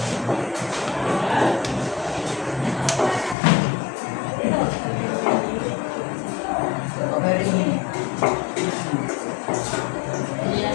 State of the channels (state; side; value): drops out; right; at 3.4 s